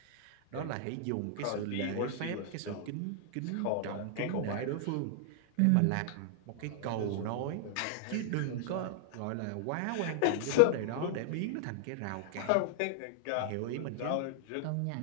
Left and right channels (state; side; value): different; both; correlation 0.00